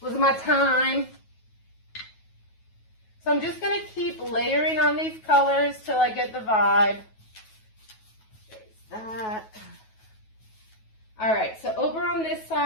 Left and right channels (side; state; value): right; late; 9.3 ms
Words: was my time. So I'm just going to keep layering on these colors till I get the vibe. There's that. All right, so over on this